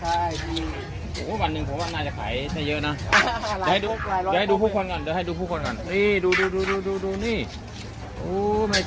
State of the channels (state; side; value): identical; both; correlation 1.00